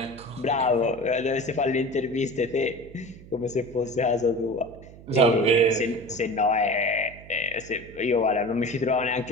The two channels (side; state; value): right; noise; hum, 19 dB below the sound